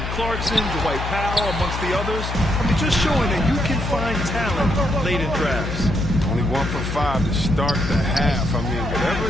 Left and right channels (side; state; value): left; noise; hum, 5 dB below the sound